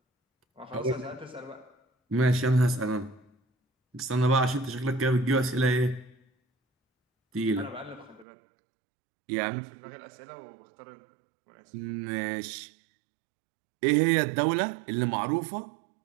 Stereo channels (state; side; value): drops out; left; at 8.2 s